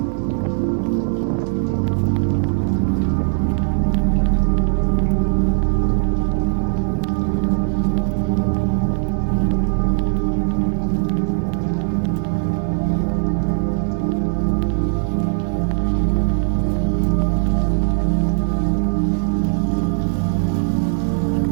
am I operating out of kindness and wisdom? Besides the process of looking inside and seeing what our motivation is, we can also consciously cultivate a more expansive motivation. An expansive motivation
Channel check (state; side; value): silent; left; digital silence